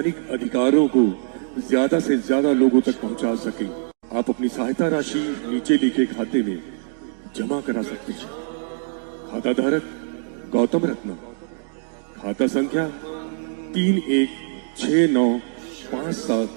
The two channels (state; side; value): silent; left; digital silence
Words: अधिकारों को ज्यादा से ज्यादा लोगों तक पहुंचा सकें। आप अपनी सहायता राशि नीचे लिखे खाते में जमा करा सकते हैं। खाता धारक गौतम रत्ना, खाता संख्या